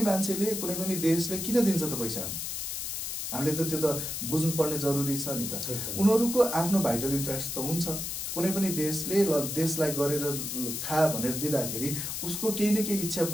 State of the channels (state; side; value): noise; left; hiss, 4 dB below the sound